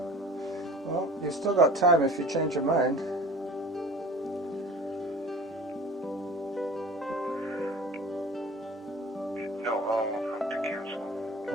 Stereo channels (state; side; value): normal; both; correlation 0.41